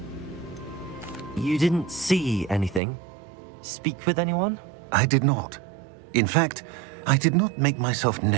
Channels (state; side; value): drops out; left; at 2.8 s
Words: You didn't see anything? Speak with anyone? I did not. In fact, I did not make myself